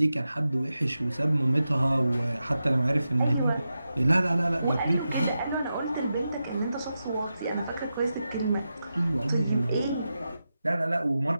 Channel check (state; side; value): inverted; both; correlation -0.90